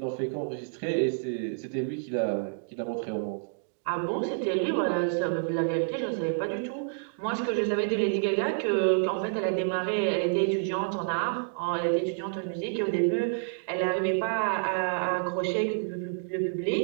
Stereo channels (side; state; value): left; silent; digital silence